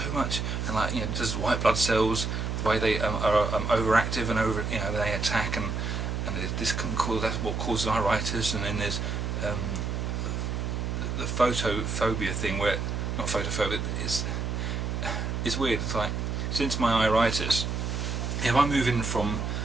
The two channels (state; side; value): noise; right; hum, 2 dB below the sound